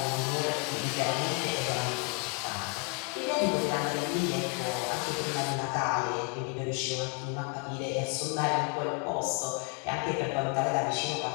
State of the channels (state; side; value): quieter; right; 34.1 dB